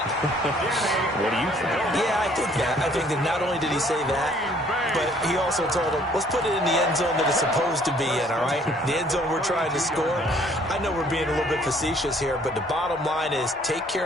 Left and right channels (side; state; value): both; normal; correlation 0.60